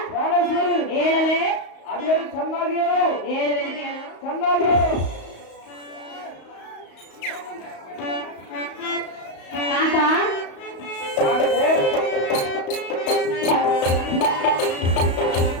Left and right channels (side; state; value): right; late; 34 ms